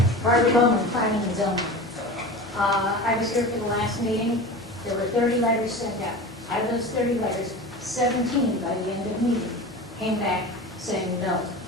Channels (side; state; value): both; normal; correlation 0.32